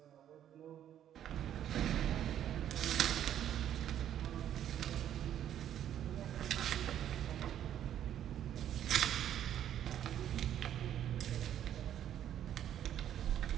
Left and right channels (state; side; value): quieter; left; 10.6 dB